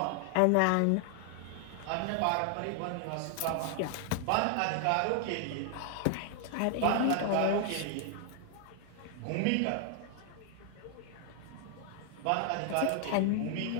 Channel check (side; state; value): both; different; correlation 0.00